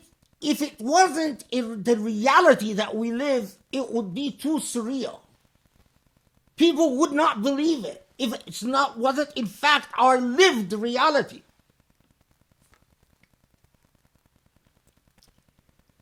If it wasn't in the reality that we live, it would be too surreal. People would not believe it if it's not wasn't in fact our lived reality.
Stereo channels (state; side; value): identical; both; correlation 1.00